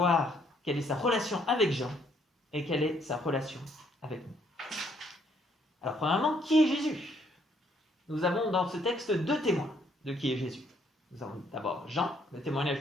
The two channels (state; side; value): normal; both; correlation 0.68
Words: quelle est sa relation avec Jean et quelle est sa relation avec nous. Alors premièrement, qui est Jésus ? Nous avons dans ce texte 2 témoins de qui est Jésus. Nous avons d'abord Jean, le témoignage